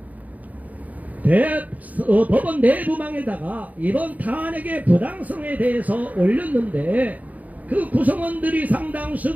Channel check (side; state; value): left; late; 0.074 ms